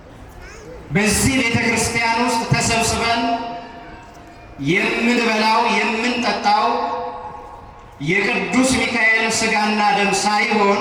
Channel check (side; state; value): both; identical; correlation 1.00